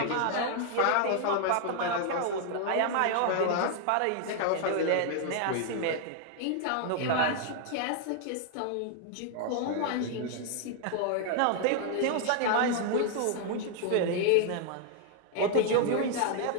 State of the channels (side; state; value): both; different; correlation 0.00